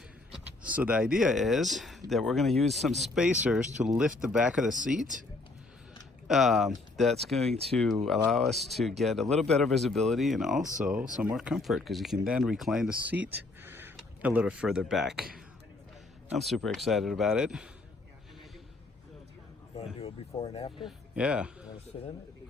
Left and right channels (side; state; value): right; quieter; 3.2 dB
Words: So the idea is that we're going to use some spacers to lift the back of the seat. That's going to allow us to get a little better visibility and also some more comfort, because you can then recline the seat a little further back. I'm super excited about it. You want to do a before and after? Yeah. You want to sit in it?